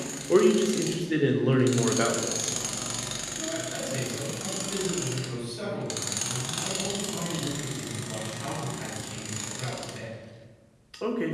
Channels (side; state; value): both; identical; correlation 1.00